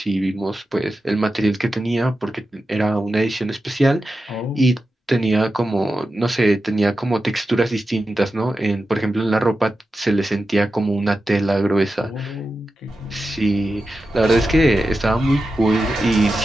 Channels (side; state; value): both; normal; correlation 0.91